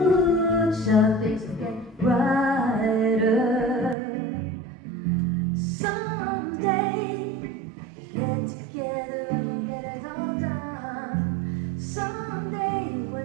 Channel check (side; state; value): left; drops out; at 4.0 s